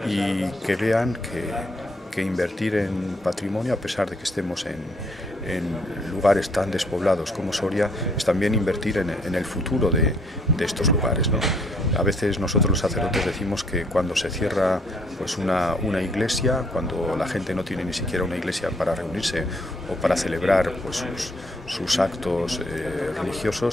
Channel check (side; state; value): both; normal; correlation 0.66